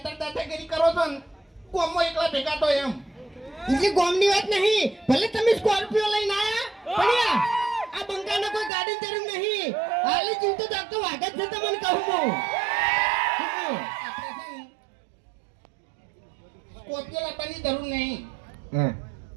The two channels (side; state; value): left; drops out; at 8.7 s